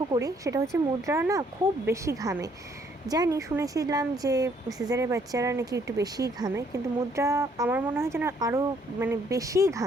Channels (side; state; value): both; normal; correlation 0.66